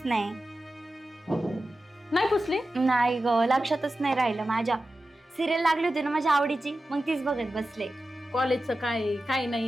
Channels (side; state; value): both; normal; correlation 0.93